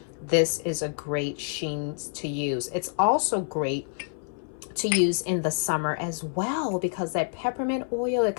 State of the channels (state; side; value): silent; right; 60 dB below the other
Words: This is a great sheen to use. It's also great to use in the summer as well, because that peppermint oil, a